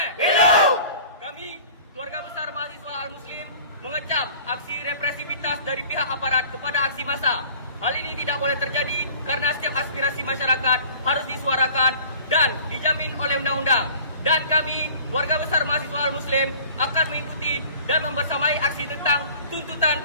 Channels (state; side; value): inverted; both; correlation -0.47